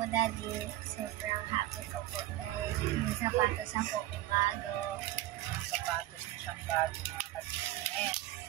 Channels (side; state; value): left; quieter; 15.7 dB